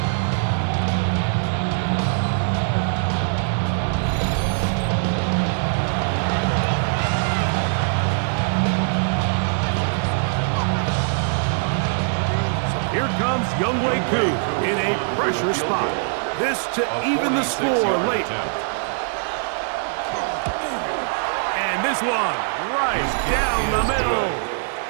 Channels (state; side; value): silent; left; 64 dB below the other